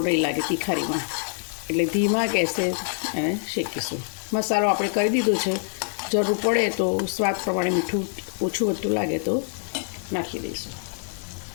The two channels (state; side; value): silent; right; digital silence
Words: નહીં લાગે તિખારીમાં. એટલે ધીમા ગેસે એને શેકીશું. મસાલો આપણે કરી દીધો છે. જરૂર પડે તો સ્વાદ પ્રમાણે મીઠું ઓછું વધતું લાગે તો નાખી દઈશું.